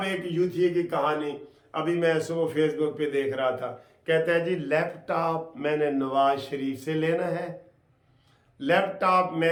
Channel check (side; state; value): both; identical; correlation 1.00